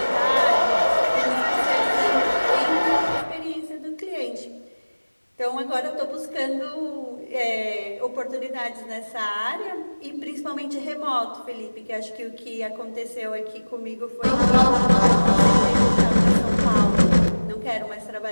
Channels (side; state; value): both; inverted; correlation -1.00